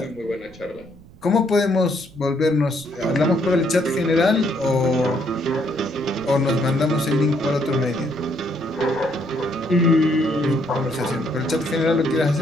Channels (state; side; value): noise; right; rumble, 23 dB below the sound